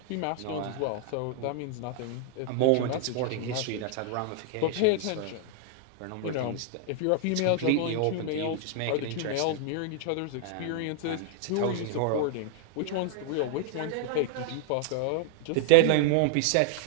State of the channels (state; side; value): different; both; correlation 0.00